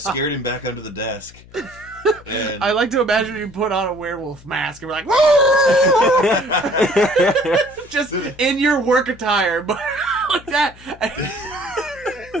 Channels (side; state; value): left; noise; hum, 22 dB below the sound